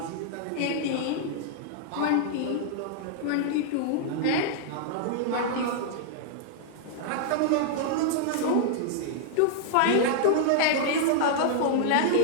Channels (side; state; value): both; different; correlation -0.01